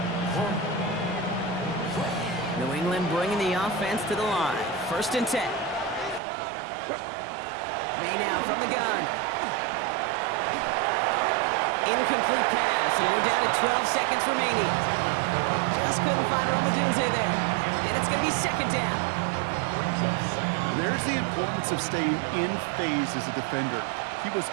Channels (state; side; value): drops out; left; at 6.2 s